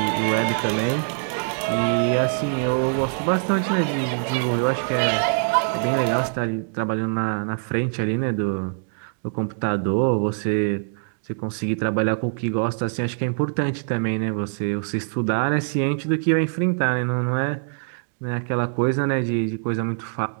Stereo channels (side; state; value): left; silent; digital silence